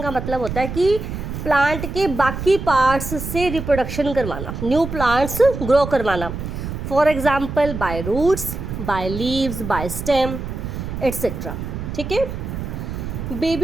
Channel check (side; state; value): right; noise; rumble, 6 dB below the sound